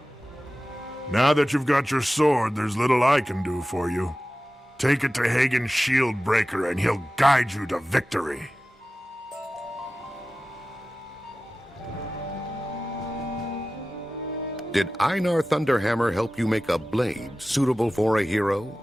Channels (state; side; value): normal; both; correlation 0.95